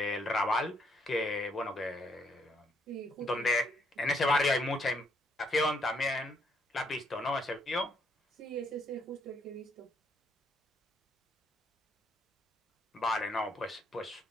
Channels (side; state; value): both; normal; correlation 0.73